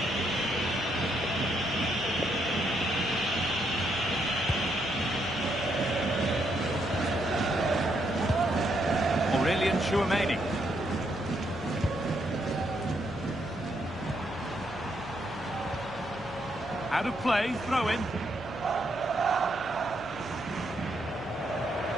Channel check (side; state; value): left; noise; hum, 16 dB below the sound